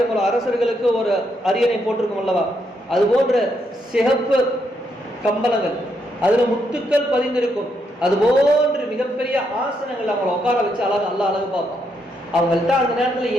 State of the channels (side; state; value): both; normal; correlation 0.78